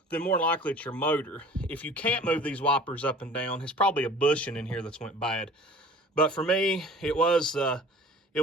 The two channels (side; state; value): both; normal; correlation 0.46